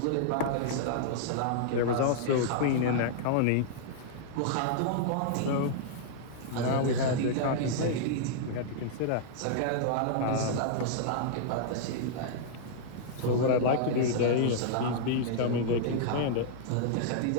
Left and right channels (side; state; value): both; different; correlation -0.01